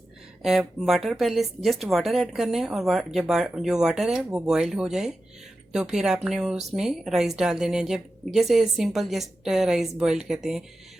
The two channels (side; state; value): both; normal; correlation 0.92